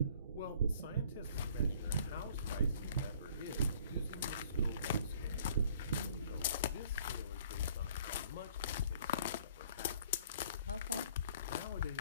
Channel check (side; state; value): both; inverted; correlation -0.56